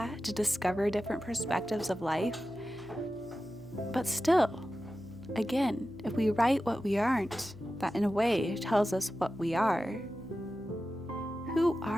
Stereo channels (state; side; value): noise; right; hum, 21 dB below the sound